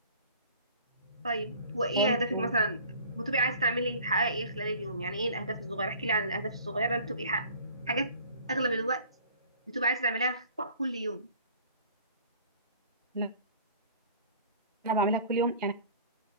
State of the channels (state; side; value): inverted; both; correlation -0.49